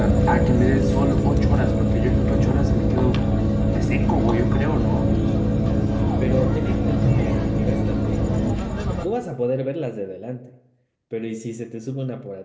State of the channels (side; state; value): both; identical; correlation 1.00